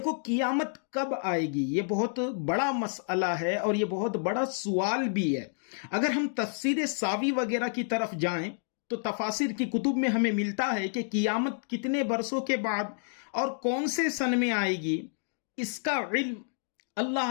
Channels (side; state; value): right; silent; digital silence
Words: قیامت کب آئے گی یہ بہت بڑا مسئلہ ہے اور یہ بہت بڑا سوال بھی ہے۔ اگر ہم تفسیر ساوی وغیرہ کی طرف جائیں تو تفاسیر کی کتب میں ہمیں ملتا ہے کہ قیامت کتنے برسوں کے بعد اور کون سے سن میں آئے گی، اس کا علم